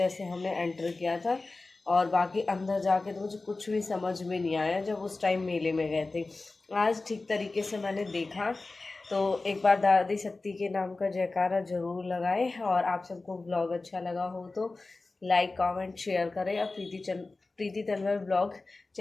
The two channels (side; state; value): right; quieter; 3.4 dB